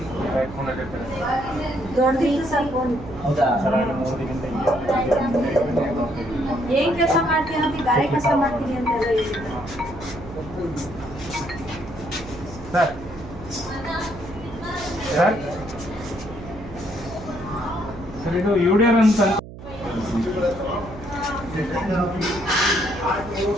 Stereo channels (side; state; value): right; noise; hum, 14 dB below the sound